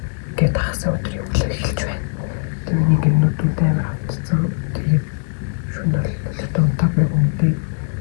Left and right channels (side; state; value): right; silent; digital silence